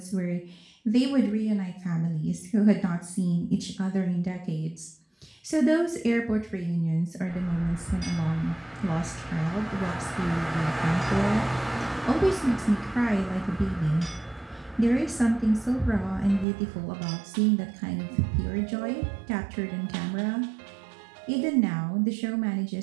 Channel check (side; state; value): left; drops out; at 16.4 s